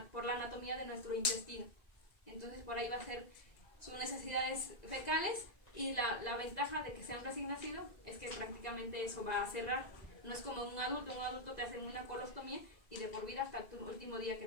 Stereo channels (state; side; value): late; right; 1.9 ms